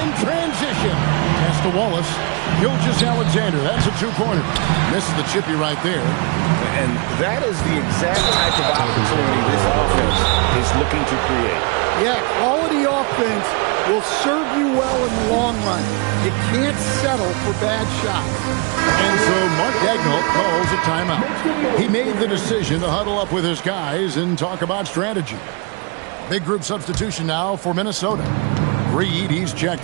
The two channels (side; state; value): left; quieter; 32.1 dB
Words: in transition. Pass to Wallace. Gilgeous-Alexander. That's a 2-pointer. Misses the chippy right there. And that is the exact type of opportunity this offense is looking to create. Yeah, quality offense will serve you well in the long run. You can't settle for bad shots. And so Mark Daigneault calls a timeout. He made the decision to huddle up with his guys and talk about strategy. Big group substitution now for Minnesota. Reed, he's